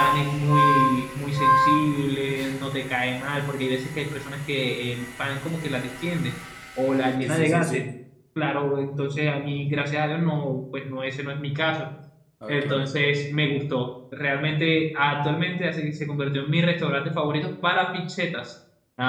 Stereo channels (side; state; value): both; identical; correlation 1.00